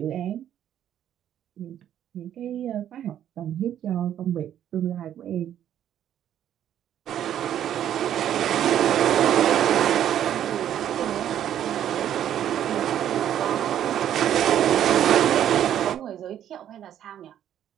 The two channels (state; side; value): quieter; left; 10.6 dB